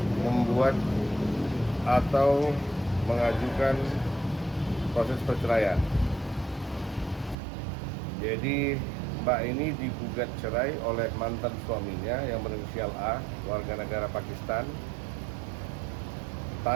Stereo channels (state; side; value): drops out; left; at 7.4 s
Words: membuat atau mengajukan proses perceraian. Jadi Mbak ini digugat cerai oleh mantan suaminya yang berinisial A, warga negara Pakistan,